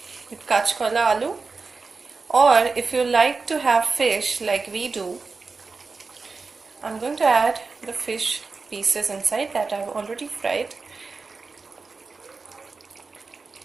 with kachkola aloo, or if you like to have fish like we do, I'm going to add the fish pieces inside that I've already fried.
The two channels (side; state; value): left; quieter; 4.3 dB